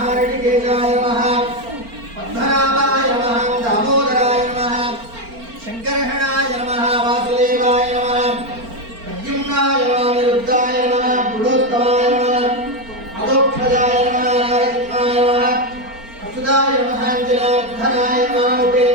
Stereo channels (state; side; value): late; left; 4.4 ms